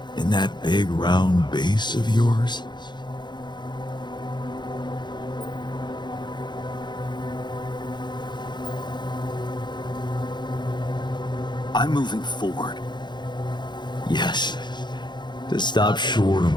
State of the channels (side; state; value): right; late; 0.21 ms